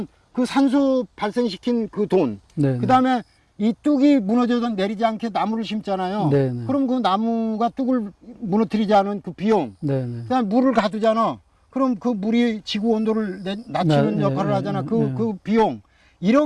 그 산소 발생시킨 그 돈, 그 다음에 이 뚝이 무너져도 내리지 않게 나무를 심잖아요. 그럼 그 나무가 뚝을 무너뜨리지 않은 그 비용, 그 다음에 물을 가두잖아. 그럼 그 물이 지구 온도를 낮추는 역할을 하잖아. 그 비용,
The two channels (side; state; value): both; identical; correlation 1.00